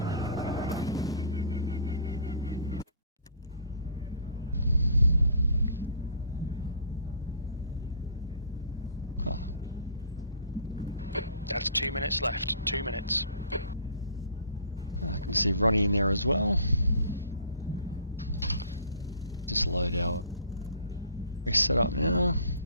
Oh, That's 2 minutes left, 2 minutes. I can see Ronnie in there as well. Just load our race setup now.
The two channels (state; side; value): inverted; both; correlation -0.51